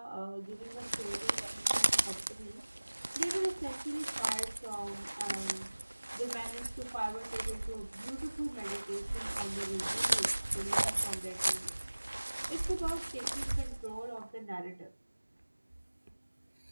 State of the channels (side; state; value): both; inverted; correlation -1.00